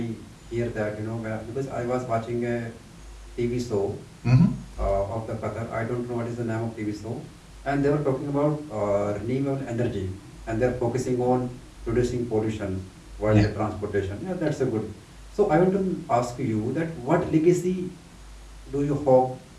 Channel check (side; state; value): both; identical; correlation 1.00